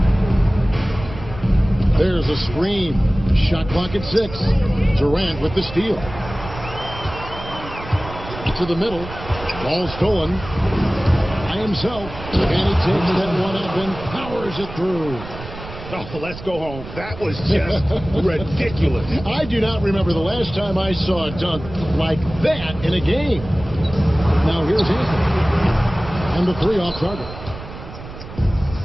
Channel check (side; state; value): right; noise; rumble, 13 dB below the sound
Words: There's a screen. Shot clock at 6. Durant with the steal. To the middle. Ball stolen by himself. And he takes that one up and powers it through. Oh, let's go home. That was just ridiculous. I do not remember the last time I saw a dunk like that in a game. Now here's Anthony. And the 3 off target.